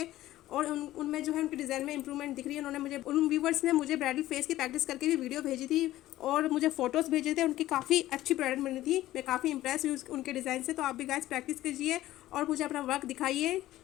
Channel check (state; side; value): quieter; right; 15.1 dB